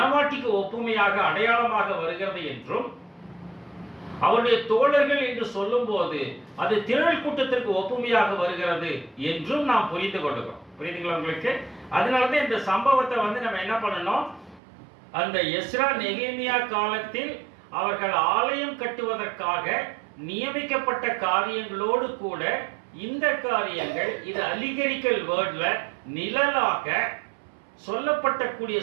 ஒப்புமையாக அடையாளமாக வருகிறது என்றும், அவருடைய தோழர்கள் என்று சொல்லும் போது அது திரள் கூட்டத்திற்கு ஒப்புமையாக வருகிறது என்றும் நாம் புரிந்து கொள்கிறோம். புரியுதுங்களா உங்களுக்கு? அதனாலதான் இந்த சம்பவத்தை நம்ம என்ன பண்ணணும், அந்த எஸ்ரா நெகேமியா காலத்தில் அவர்கள் ஆலயம் கட்டுவதற்காக நியமிக்கப்பட்ட காரியங்களோடு கூட இந்த காரியங்கள் இது அலிகரிக்கல் வேர்ட்ல நிழலாக சொல்லப்பட்டக்கூடிய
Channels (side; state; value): left; drops out; at 14.6 s